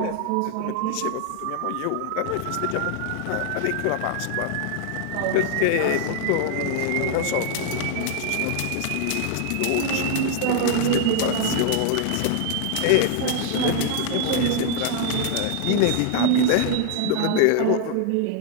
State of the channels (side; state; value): both; different; correlation 0.00